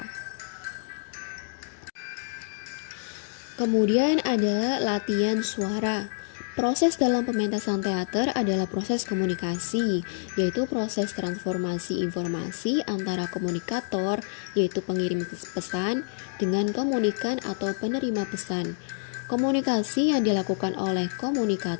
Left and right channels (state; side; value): silent; right; digital silence